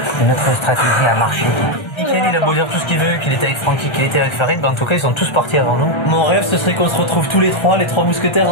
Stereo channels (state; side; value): late; right; 1.3 ms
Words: mais notre stratégie a marché. Michael, il a beau dire tout ce qu'il veut, qu'il était avec Francky, qu'il était avec Farid, en tout cas ils sont tous partis avant nous. Mon rêve ce serait qu'on se retrouve tous les trois mousquetaires